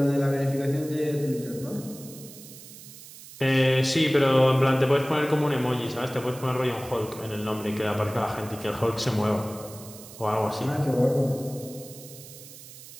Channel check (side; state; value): right; noise; hiss, 17 dB below the sound